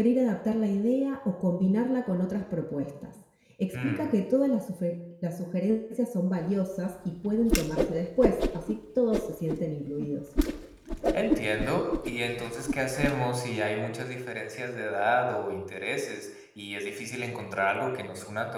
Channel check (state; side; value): identical; both; correlation 1.00